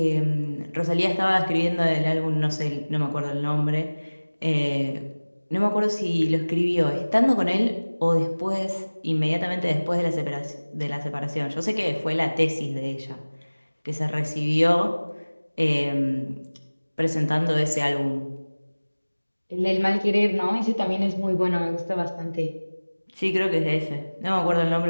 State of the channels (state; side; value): inverted; both; correlation -1.00